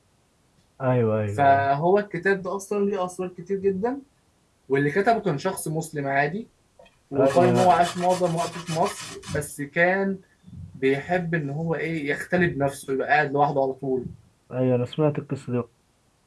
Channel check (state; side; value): identical; both; correlation 1.00